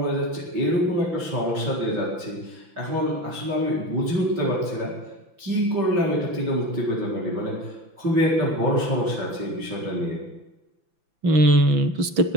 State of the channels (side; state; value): left; late; 5.9 ms